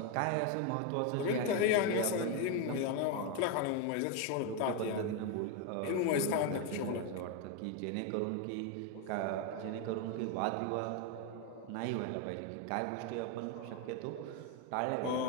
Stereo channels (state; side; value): different; both; correlation 0.02